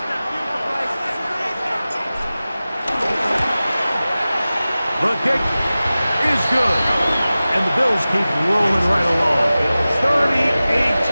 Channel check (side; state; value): both; inverted; correlation -0.97